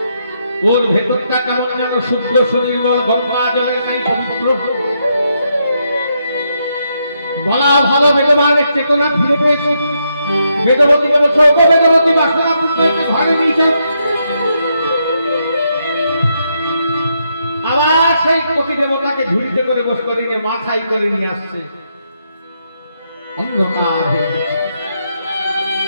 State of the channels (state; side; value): inverted; both; correlation -0.79